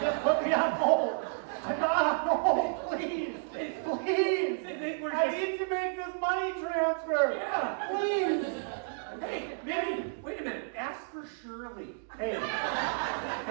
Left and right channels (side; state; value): left; silent; digital silence